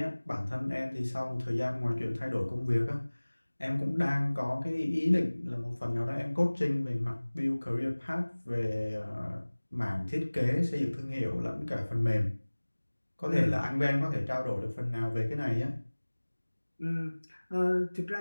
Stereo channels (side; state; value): both; inverted; correlation -1.00